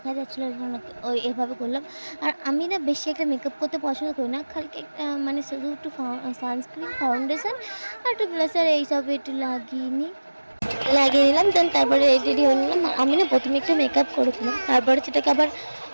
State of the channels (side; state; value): both; inverted; correlation -1.00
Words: যাচ্ছিলো, ওই এভাবে করলাম। আর আমি না বেশি একটা মেকআপ করতে পছন্দ করি না, খালি একটা মানে শুধু একটু সানস্ক্রিন, ফাউন্ডেশন আর একটু ব্লাশার এইসব একটু লাগিয়ে নিলাম। দেন তারপরে রেডি হয়ে নিলাম। আমি না প্রথমে একটু মেকআপ করেছিলাম, তারপরে সেটাকে আবার